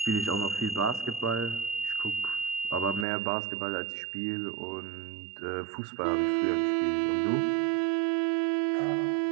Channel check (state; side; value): drops out; left; at 3.1 s